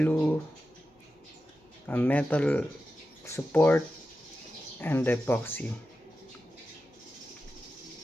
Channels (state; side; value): normal; both; correlation 0.92